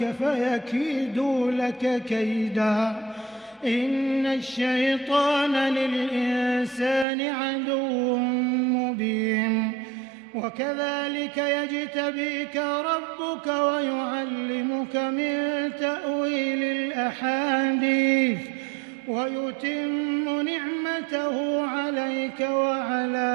فيكيدوا لك كيدا إن الشيطان للإنسان عدو مبين. وكذلك يجتبيك ربك ويعلمك من تأويل الأحاديث ويتم نعمته عليك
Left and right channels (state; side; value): drops out; left; at 7.1 s